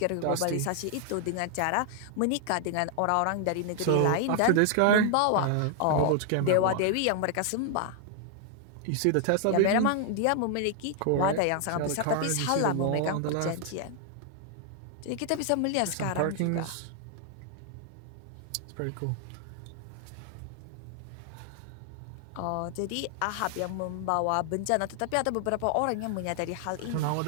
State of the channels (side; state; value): both; different; correlation 0.00